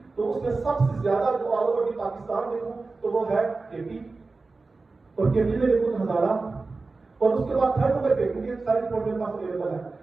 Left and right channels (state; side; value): quieter; left; 3.8 dB